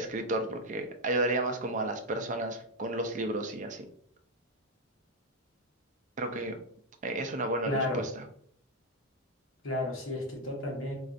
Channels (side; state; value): both; normal; correlation 0.03